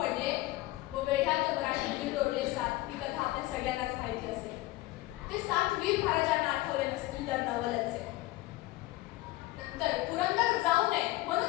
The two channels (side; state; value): right; quieter; 18.4 dB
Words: व वेढ्यात मराठी तोडले 7. ही कथा आपण सगळ्यांनाच माहिती असेल. ते 7 वीर महाराजांना आठवले नसतील तर नवलच आहे. नंतर पुरंदर जाऊ नये